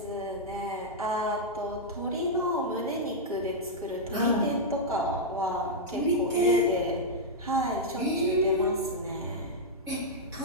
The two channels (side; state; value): both; normal; correlation -0.06